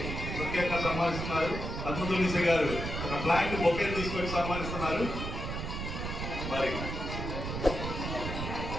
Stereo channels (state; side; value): noise; right; rumble, 4 dB below the sound